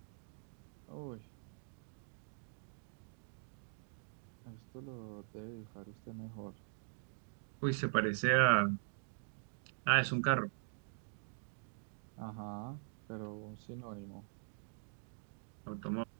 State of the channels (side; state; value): left; silent; digital silence